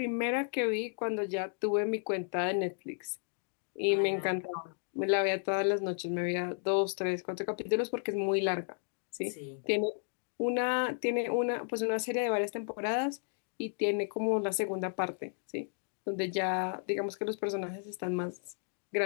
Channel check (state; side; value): silent; right; 56 dB below the other